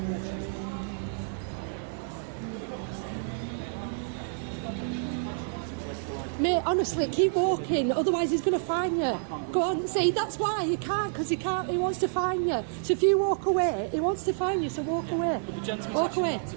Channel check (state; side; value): silent; left; digital silence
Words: Mate, honestly, keep walking, otherwise he's going to fine you. Go on, see, that's why he can't, because he wants to fine you. So if you walk away, he wants to fine you, so walk away. Walk away,